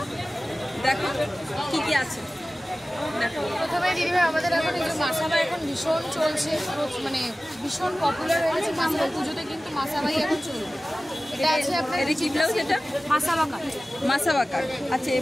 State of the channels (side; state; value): both; normal; correlation 0.97